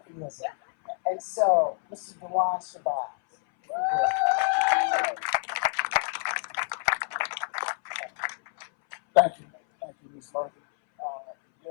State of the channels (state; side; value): silent; right; 59 dB below the other